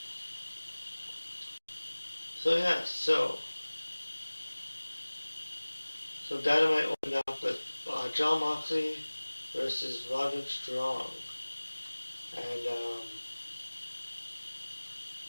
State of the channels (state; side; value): inverted; both; correlation -1.00